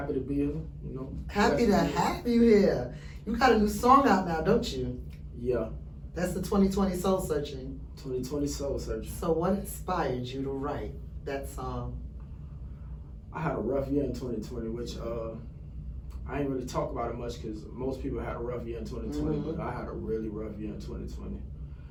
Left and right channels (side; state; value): both; identical; correlation 1.00